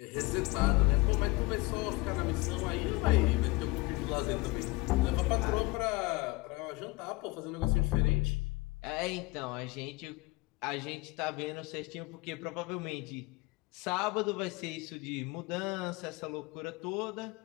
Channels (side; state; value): right; quieter; 23.1 dB